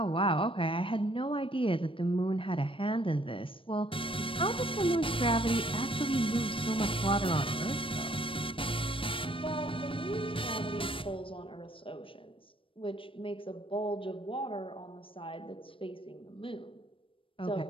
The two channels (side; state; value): right; late; 0.25 ms